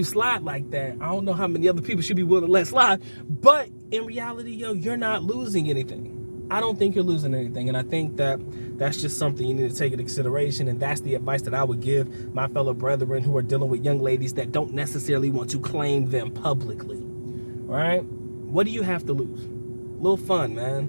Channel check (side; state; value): both; inverted; correlation -1.00